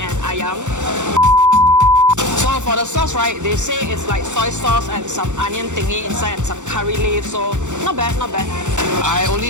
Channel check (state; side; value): late; left; 0.85 ms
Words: ayam. So for the sauce, right, they say it's like soy sauce and some onion thingy inside and some curry leaf. So not bad, not bad. I only